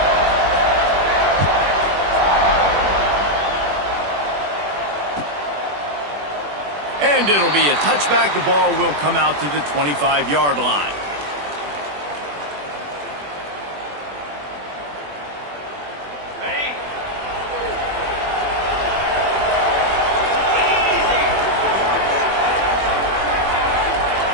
And it'll be a touchback. The ball will come out to the 25-yard line.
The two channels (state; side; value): late; left; 21 ms